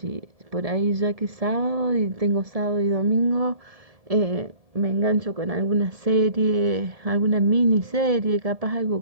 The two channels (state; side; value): late; left; 1.7 ms